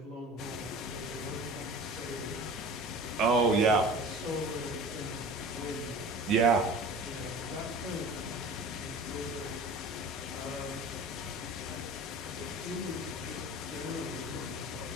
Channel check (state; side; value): normal; both; correlation 0.39